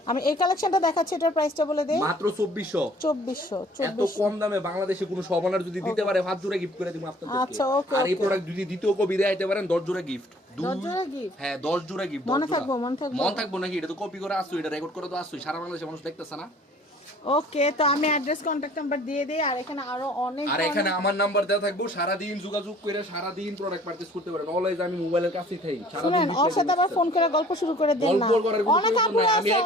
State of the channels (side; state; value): both; normal; correlation 0.53